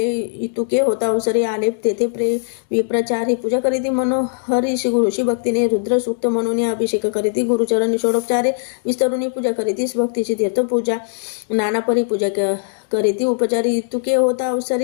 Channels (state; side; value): silent; right; digital silence